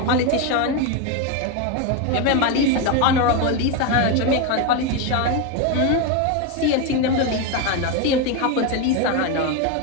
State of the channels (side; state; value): both; different; correlation 0.03